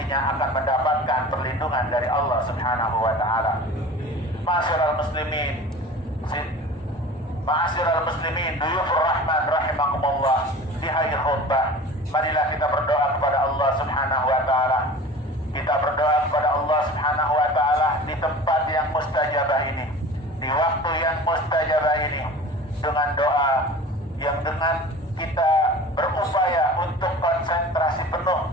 akan mendapatkan perlindungan dari Allah Subhanahu wa taala. Ma'asyiral muslimin, ma'asyiral muslimin, duyufur rahman rahimakumullah. Di hari khutbah, marilah kita berdoa kepada Allah Subhanahu wa taala. Kita berdoa kepada Allah Subhanahu wa taala di tempat yang mustajabah ini, di waktu yang mustajabah ini, dengan doa yang dengan kita berupaya untuk konsentrasi penuh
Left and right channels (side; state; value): both; normal; correlation 0.39